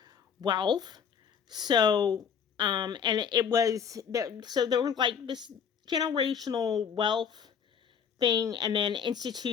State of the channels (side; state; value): right; quieter; 7.3 dB